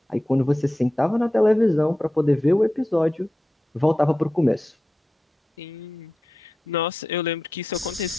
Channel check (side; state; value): both; normal; correlation 0.91